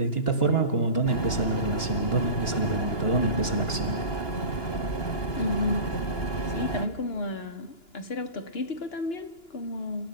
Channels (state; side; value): late; right; 2.9 ms